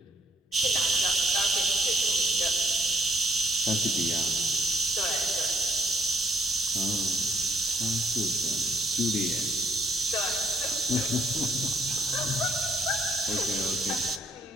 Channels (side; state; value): both; normal; correlation 0.68